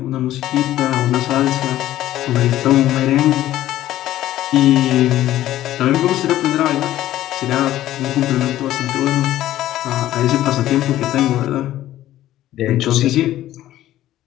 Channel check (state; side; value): quieter; right; 13.8 dB